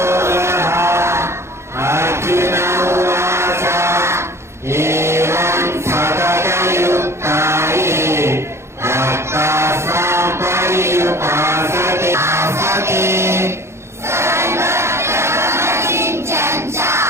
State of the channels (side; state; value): left; late; 0.13 ms